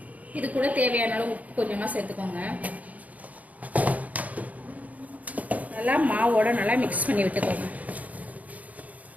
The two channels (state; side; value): late; left; 0.073 ms